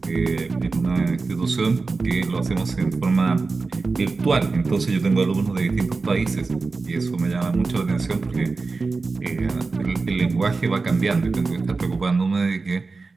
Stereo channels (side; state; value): left; quieter; 4.0 dB